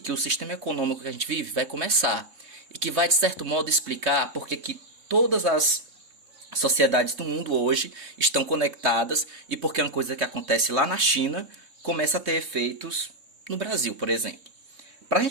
o sistema econômico que a gente vive vai começar e que vai, de certo modo, explicar porque que todas as sociedades do mundo hoje estão conectadas e porque uma coisa que acontece lá na China começa a ter efeitos no Brasil, por exemplo. Para a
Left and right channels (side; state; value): left; late; 3.2 ms